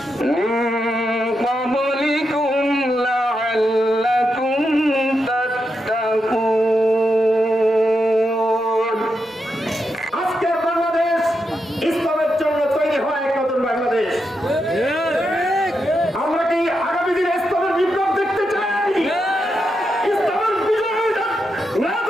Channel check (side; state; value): both; normal; correlation 0.85